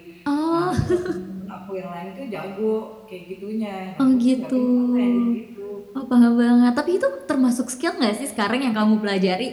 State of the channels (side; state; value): both; identical; correlation 1.00